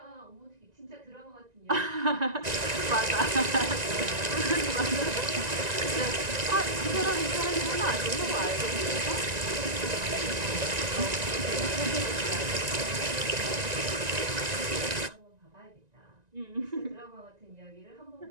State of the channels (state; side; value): late; left; 1.9 ms